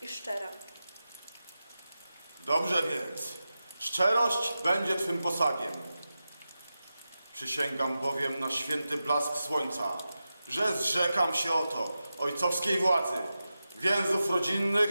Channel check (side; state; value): both; inverted; correlation -0.92